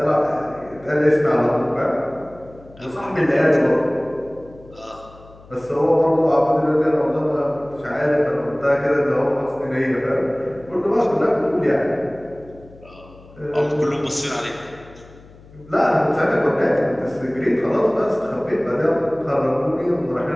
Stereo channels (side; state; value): left; noise; hum, 23 dB below the sound